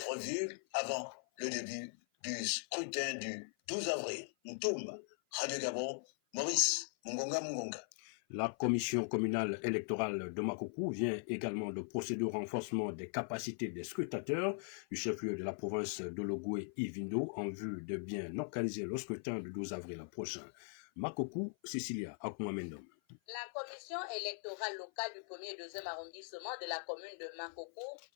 avant le début du scrutin du 12 avril. Ntoum, Radio Gabon, Maurice Mungonga. La commission communale électorale de Makoko vient également de procéder au renforcement des capacités des scrutateurs du chef-lieu de la province de Logoué Ivindo en vue de bien organiser le scrutin du 12 avril prochain. Makoko, Cecilia Akumamendom. La commission électorale locale du 1er et 2e arrondissement de la commune de Makoko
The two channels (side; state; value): right; silent; 51 dB below the other